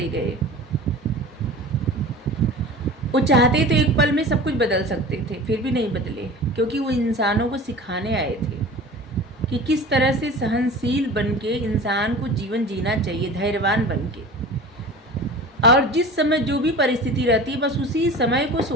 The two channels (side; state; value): both; normal; correlation 0.38